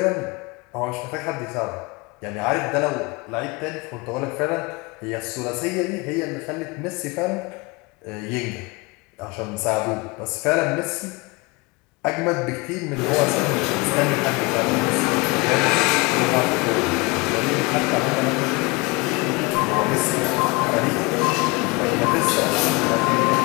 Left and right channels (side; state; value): right; quieter; 26.0 dB